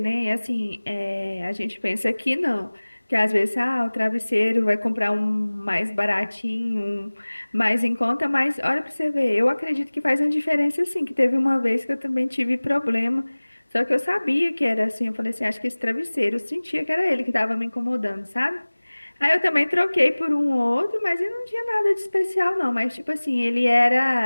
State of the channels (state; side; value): inverted; both; correlation -1.00